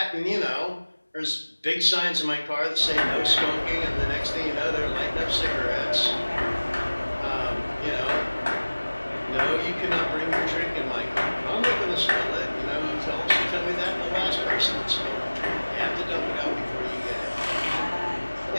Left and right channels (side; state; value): both; inverted; correlation -1.00